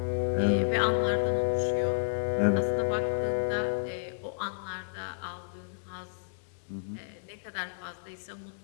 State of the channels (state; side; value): silent; right; digital silence